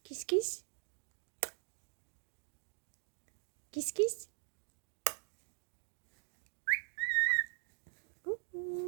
Kiss, kiss. Kiss, kiss.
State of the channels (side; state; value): left; silent; 50 dB below the other